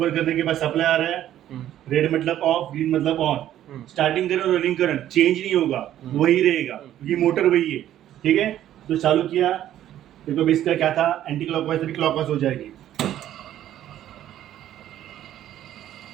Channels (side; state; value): left; quieter; 12.0 dB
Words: करने के बाद सप्लाई आ रहा है, रेड मतलब ऑफ, ग्रीन मतलब ऑन। स्टार्टिंग करंट और रनिंग करंट चेंज नहीं होगा, वही रहेगा क्योंकि मोटर वही है, ठीक है। तो चालू किया, देखो इसका क्या था, एंटी क्लॉकवाइज से क्लॉकवाइज हो जाएगी,